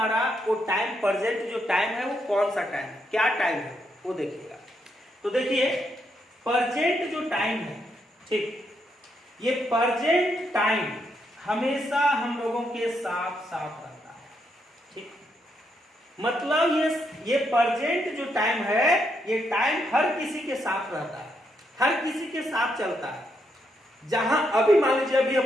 वो टाइम, प्रेजेंट जो टाइम है वो कौन सा टाइम है, क्या टाइम है वो देखिएगा। तो देखिए प्रेजेंट जो टाइम है, ठीक, ये प्रेजेंट टाइम हमेशा हम लोगों के साथ साथ रहता है, ठीक। मतलब ये प्रेजेंट जो टाइम है, ये टाइम हर किसी के साथ रहता है, हर किसी के साथ चलता है। जहां अभी मान लीजिए अभी हम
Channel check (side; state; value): both; normal; correlation 0.78